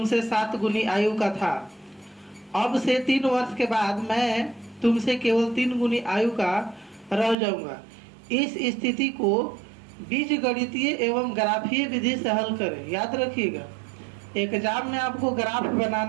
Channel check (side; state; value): left; drops out; at 7.4 s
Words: 7 गुनी आयु का था, अब से 3 वर्ष के बाद मैं तुमसे केवल 3 गुनी आयु का रह जाऊंगा। इस स्थिति को बीजगणितीय एवं ग्राफीय विधि से हल करें। याद रखिएगा एग्जाम में आपको ग्राफ